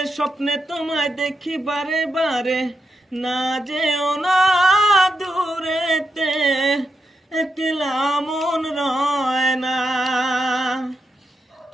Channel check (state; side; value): normal; both; correlation 0.84